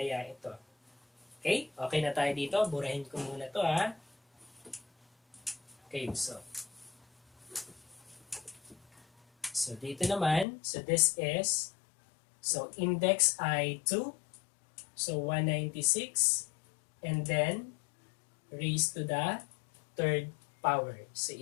ito? Okay, okay na tayo dito. Burahin ko muna to ha. Okay, so dito naman, so this is, so index ay 2, so 196, and then raised to the third power. So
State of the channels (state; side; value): drops out; right; at 10.5 s